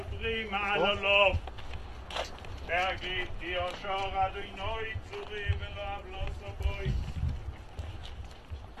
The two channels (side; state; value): both; identical; correlation 1.00